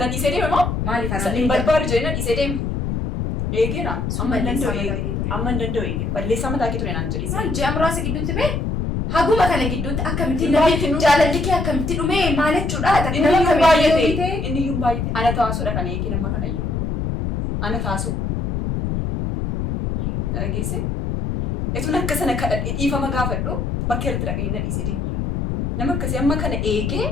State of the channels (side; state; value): left; noise; rumble, 1 dB below the sound